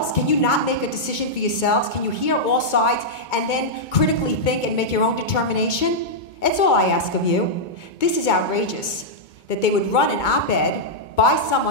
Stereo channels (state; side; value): late; right; 2.2 ms